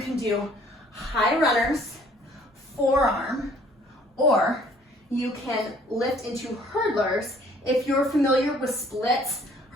do high runners, forearm, or you can lift into hurdlers. If you're familiar with splits,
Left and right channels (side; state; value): both; normal; correlation 0.58